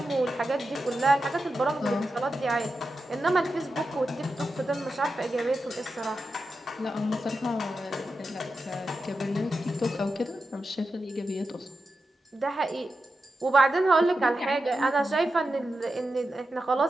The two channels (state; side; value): normal; both; correlation 0.90